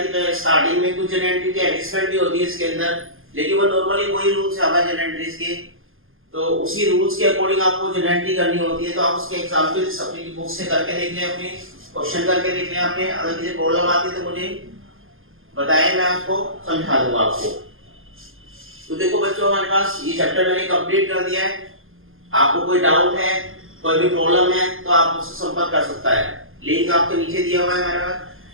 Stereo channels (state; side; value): late; left; 0.59 ms